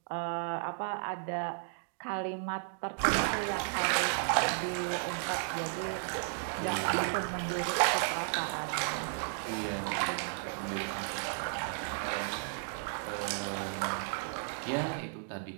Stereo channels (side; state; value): left; silent; digital silence